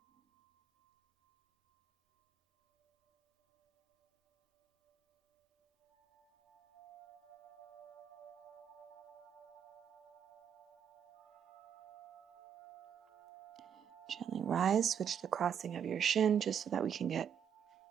Gently rise, switch the crossing of your shin just so that we can get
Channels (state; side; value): quieter; left; 8.3 dB